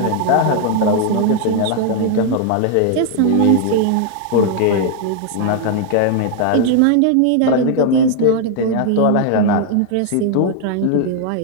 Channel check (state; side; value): different; both; correlation 0.00